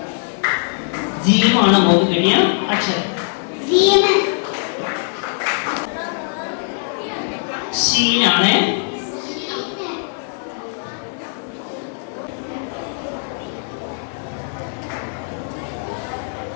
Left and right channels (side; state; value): right; silent; 59 dB below the other